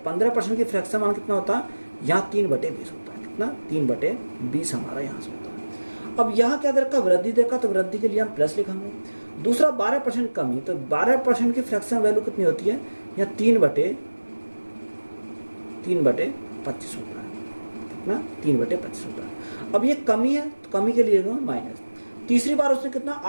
की फ्रैक्शन मान कितना होता है, यहाँ 3/20 होता है। कितना? 3/20 हमारा यहाँ से होता है। अब यहाँ क्या देखा, वृद्धि देखा, तो वृद्धि के लिए हम प्लस लिखेंगे। दूसरा 12% कमी, तो 12% की फ्रैक्शन वैल्यू कितनी होती है, यहाँ 3/25 होता है। कितना? 3/25 होता है। अब ये कमी है, तो कमी के लिए माइनस। तीसरी बार उसने कितना,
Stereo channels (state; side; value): inverted; both; correlation -1.00